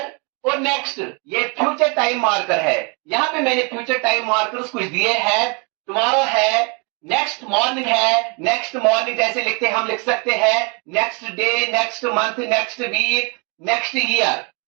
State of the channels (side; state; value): left; quieter; 33.3 dB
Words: और नेक्स्ट ये फ्यूचर टाइम मार्कर है। यहाँ पे मैंने फ्यूचर टाइम मार्कर्स कुछ दिए हैं। टुमारो है, नेक्स्ट मॉर्निंग है, नेक्स्ट मॉर्निंग जैसे लिखते हम लिख सकते हैं next day, next month, next week, next year.